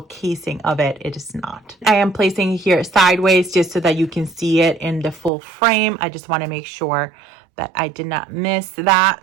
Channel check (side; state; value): left; drops out; at 5.3 s